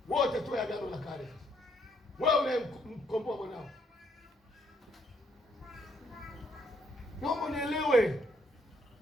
wote tu Agano la Kale. Wewe unayemkomboa mwanao, naomba nielewe.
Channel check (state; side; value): normal; both; correlation 0.71